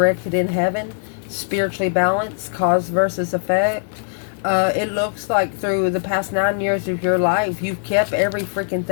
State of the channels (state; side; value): silent; right; digital silence